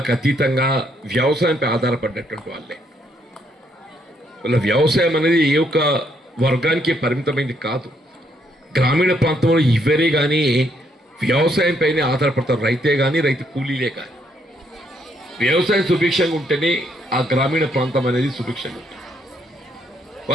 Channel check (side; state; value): both; normal; correlation 0.72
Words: అతీతంగా వ్యవసాయంపై ఆధారపడినటువంటి వాళ్ళే. వాళ్ళ వ్యవసాయం అనేది ఏ ఒక్క వర్గానికి పరిమితమైంది కాదు. గ్రామీణ ప్రాంతంలో ఎవరే కానీ వ్యవసాయంపైనే ఆధారపడతారు. రైతే కానీ రైతు కూలీలే కానీ వ్యవసాయం సుభిక్షంగా ఉంటేనే ఆ గ్రామీణ ప్రాంతం అనేది సుభిక్షంగా ఉంటుంది.